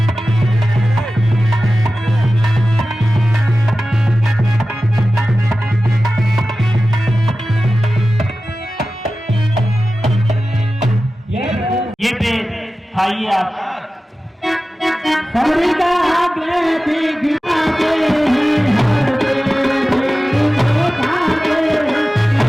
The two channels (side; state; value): both; normal; correlation 0.95